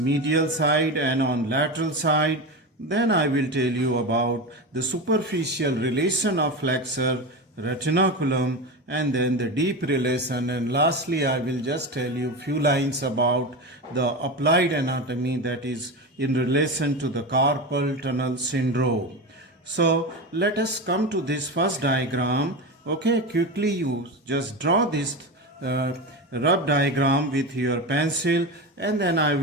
side and on lateral side, then I will tell you about the superficial relation of flexor retinaculum and then the deep relation, and lastly I will just tell you few lines about the applied anatomy, that is in relation to the carpal tunnel syndrome. So let us come to this first diagram. Okay, quickly you just draw this rough diagram with your pencil, and then I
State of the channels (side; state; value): both; normal; correlation 0.21